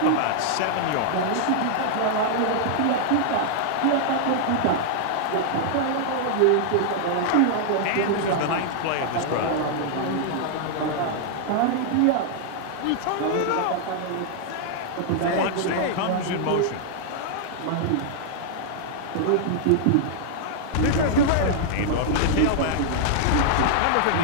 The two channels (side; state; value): both; different; correlation -0.01